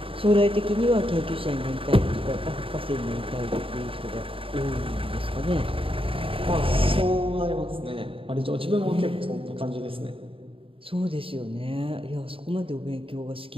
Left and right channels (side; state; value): left; late; 0.26 ms